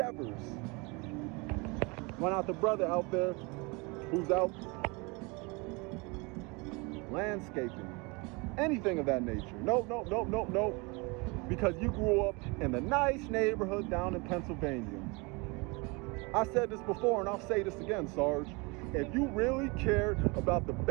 Why not the brother out there who's out landscaping? Anything of that nature. No. Because you grew up in the nice neighborhood down in Pennsylvania. I said this before and I'll say this again, Sarge. If you really cared about the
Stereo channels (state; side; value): quieter; left; 28.1 dB